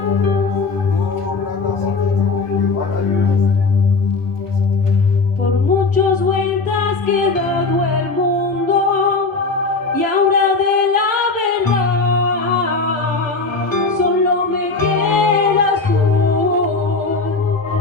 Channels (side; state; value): right; quieter; 4.0 dB